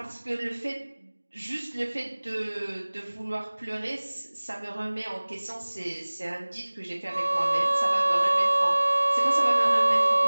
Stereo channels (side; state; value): both; inverted; correlation -1.00